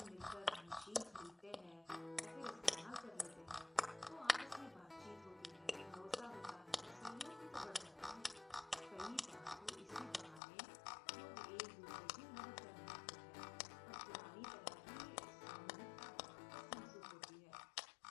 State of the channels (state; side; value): drops out; right; at 10.4 s